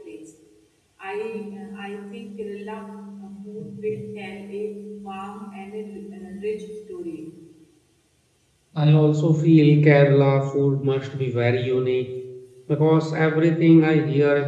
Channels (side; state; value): both; identical; correlation 1.00